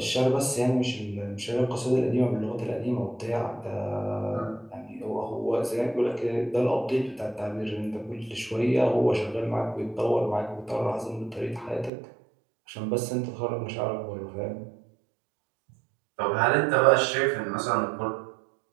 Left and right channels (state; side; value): drops out; left; at 11.9 s